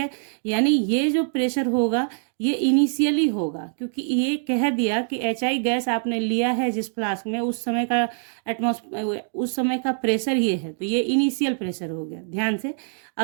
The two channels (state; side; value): silent; left; digital silence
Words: यानी ये जो प्रेशर होगा ये इनिशियली होगा, क्योंकि ये कह दिया कि HI गैस आपने लिया है जिस फ्लास्क में उस समय का उस समय का प्रेशर ये है, तो ये इनिशियल प्रेशर हो गया। ध्यान से